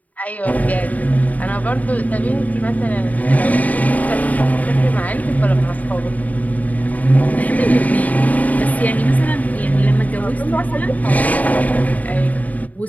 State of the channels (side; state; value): right; late; 0.074 ms